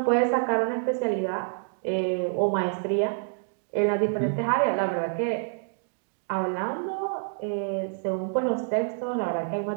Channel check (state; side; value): silent; left; digital silence